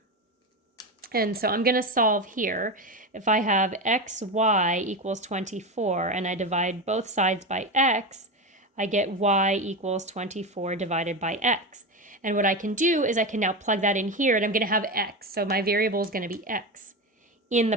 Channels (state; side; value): normal; both; correlation 0.19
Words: And so I'm going to solve here. If I have xy equals 24 and I divide both sides by x, I get y equals 24 divided by x. And what I can do is I can now plug that in here, and I'm going to have x. So my variable is going to be x in the